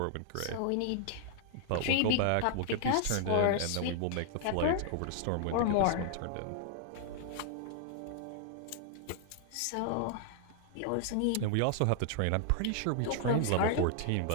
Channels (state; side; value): different; both; correlation 0.00